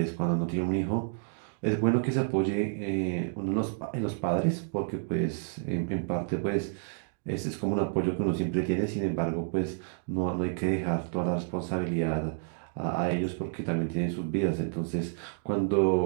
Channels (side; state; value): left; silent; digital silence